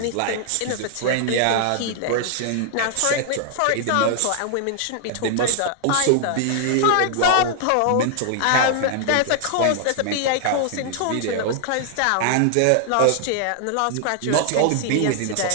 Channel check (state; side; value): different; both; correlation -0.01